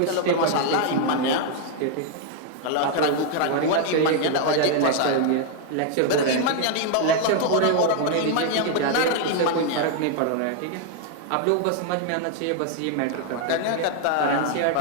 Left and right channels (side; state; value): both; different; correlation 0.00